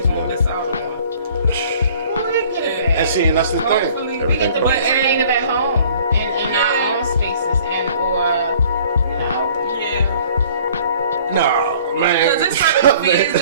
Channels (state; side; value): inverted; both; correlation -0.53